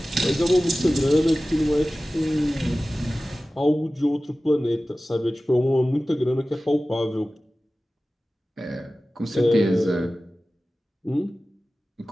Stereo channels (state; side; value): normal; both; correlation 0.96